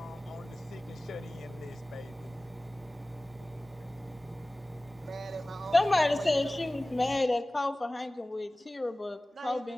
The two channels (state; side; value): normal; both; correlation 0.98